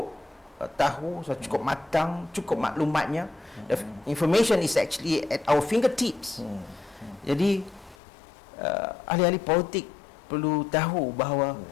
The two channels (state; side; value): drops out; right; at 8.0 s